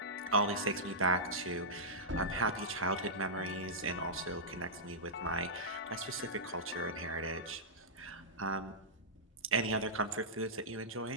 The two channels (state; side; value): normal; both; correlation -0.13